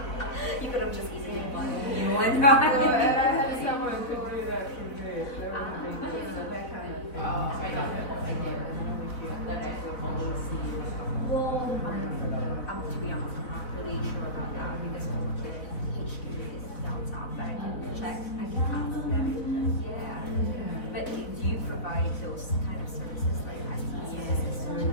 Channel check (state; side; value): late; right; 4.0 ms